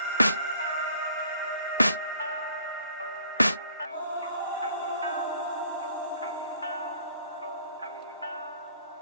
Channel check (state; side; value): inverted; both; correlation -0.59